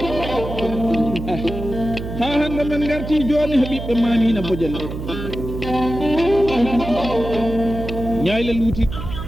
ha hande men garti joni he ɓiɓɓe Mamina Bodial ñayle luuti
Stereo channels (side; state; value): right; noise; hum, 7 dB below the sound